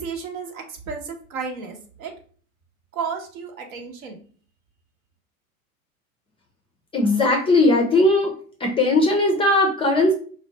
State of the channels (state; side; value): normal; both; correlation 0.43